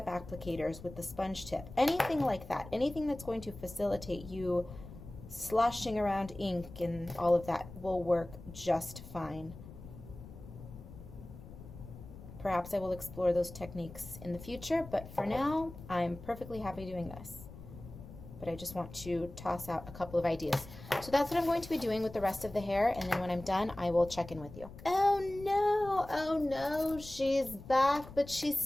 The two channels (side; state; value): left; noise; rumble, 15 dB below the sound